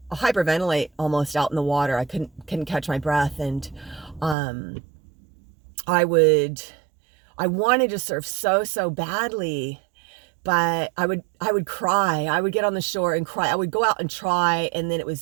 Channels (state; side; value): drops out; left; at 4.4 s